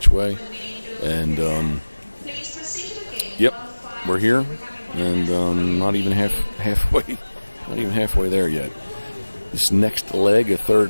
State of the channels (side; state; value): both; inverted; correlation -1.00